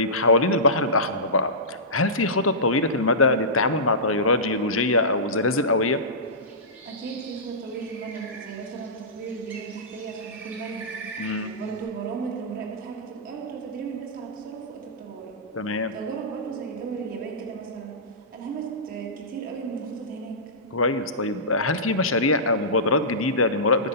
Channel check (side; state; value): both; normal; correlation -0.20